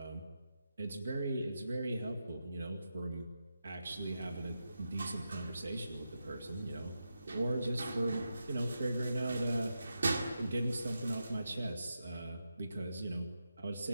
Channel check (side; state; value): both; inverted; correlation -0.88